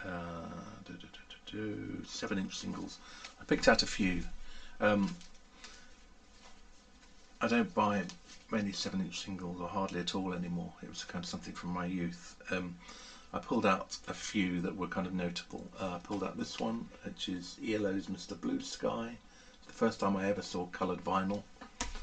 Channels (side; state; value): both; identical; correlation 1.00